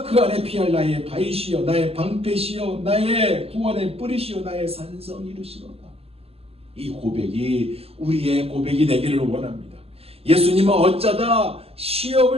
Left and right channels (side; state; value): left; late; 0.29 ms